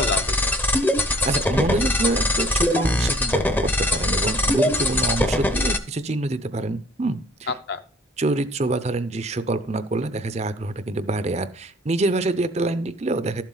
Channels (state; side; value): normal; both; correlation 0.55